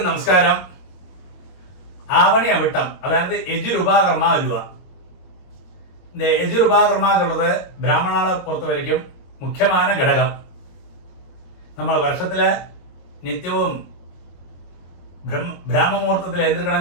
നമസ്കാരം. ആവണിയവട്ടം അതായത് യജുരുപാകർമ്മ അലുവ. இந்த യജുരുപാകർമ്മ എന്നുള്ളത് ബ്രാഹ്മണാളെ പുറത്തു വരയ്ക്കും മുഖ്യമായ ഘടകം. നമ്മൾ വർഷത്തിലെ നിത്യവും ബ്രാഹ്മമുഹൂർത്തത്തിൽ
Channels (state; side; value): late; right; 22 ms